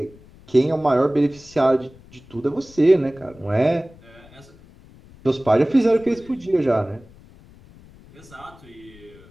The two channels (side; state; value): left; noise; rumble, 24 dB below the sound